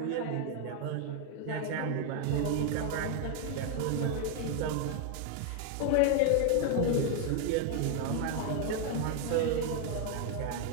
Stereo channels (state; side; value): different; both; correlation 0.00